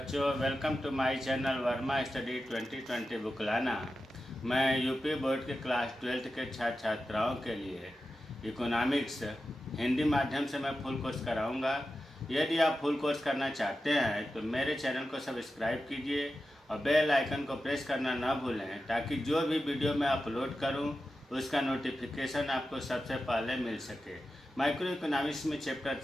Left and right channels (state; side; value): normal; both; correlation 0.92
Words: welcome to my channel Verma study 2020 बुकलाना। मैं यूपी बोर्ड के क्लास 12th के छात्र छात्राओं के लिए इकोनॉमिक्स हिंदी माध्यम से मैं फुल कोर्स कराऊंगा। यदि आप फुल कोर्स करना चाहते हैं तो मेरे चैनल को सब्सक्राइब कीजिए और बेल आइकन को प्रेस करना ना भूलें, ताकि जो भी वीडियो मैं अपलोड करूं उसका नोटिफिकेशन आपको सबसे पहले मिल सके। माइक्रो इकोनॉमिक्स में चैप्टर